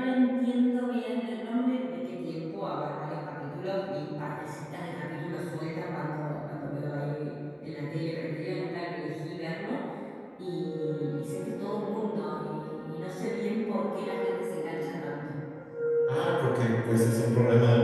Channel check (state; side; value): identical; both; correlation 1.00